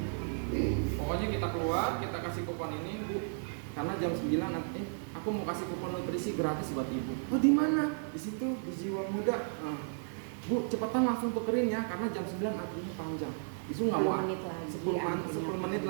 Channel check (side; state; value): left; silent; 55 dB below the other